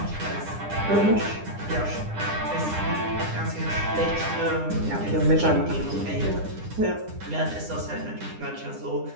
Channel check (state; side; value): late; left; 9.9 ms